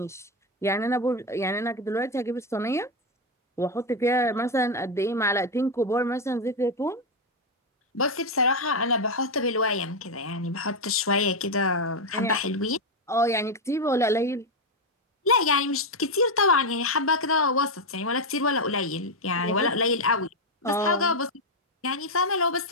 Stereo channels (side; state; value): both; normal; correlation 0.05